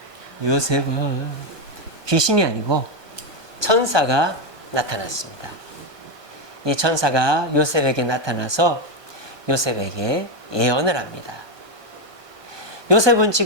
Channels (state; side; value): late; left; 1.2 ms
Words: 귀신이 아니고 천사가 나타났습니다. 이 천사가 요셉에게 나타나서 요셉에게 예언을 합니다. 요셉은